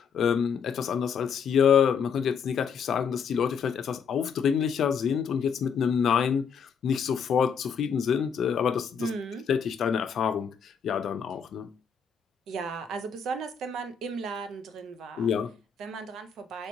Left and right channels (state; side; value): quieter; right; 6.5 dB